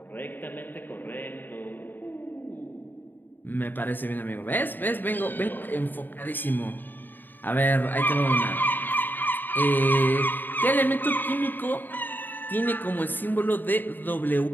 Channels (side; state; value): right; late; 0.091 ms